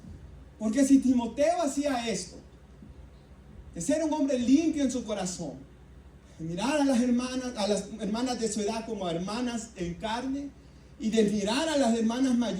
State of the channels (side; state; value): both; identical; correlation 1.00